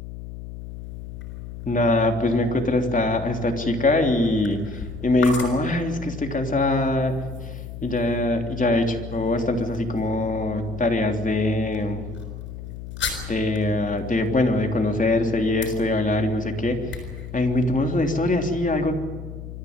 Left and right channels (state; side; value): noise; left; hum, 11 dB below the sound